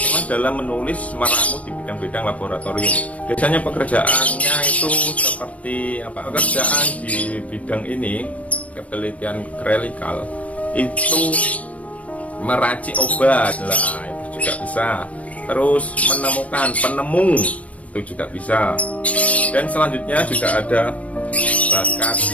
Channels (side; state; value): right; late; 0.066 ms